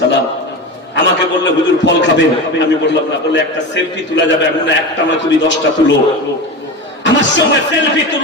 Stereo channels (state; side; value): normal; both; correlation 0.25